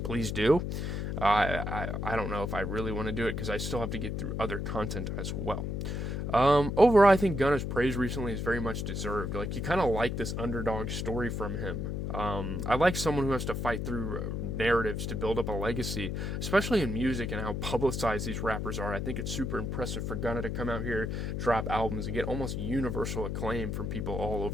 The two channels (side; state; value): left; noise; hum, 2 dB below the sound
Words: please do. I don't know if I really want to do it because I still have to get through other content as well. Overall, I think Gunna's praise recently is very much deserved. Like, you kind of like this underdog story from him. I like someone who has to fight through narratives to build up a legacy, especially in music and how publicized these rappers are. I think it's super impressive for Gunna to come out here, drop albums, and get almost universal acclaim from people all